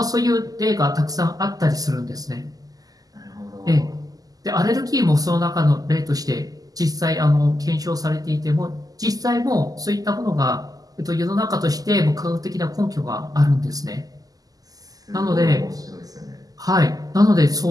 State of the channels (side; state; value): left; late; 0.17 ms